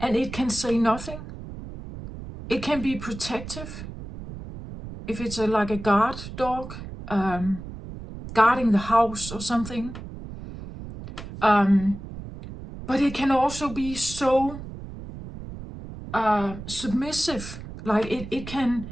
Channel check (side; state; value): right; noise; rumble, 11 dB below the sound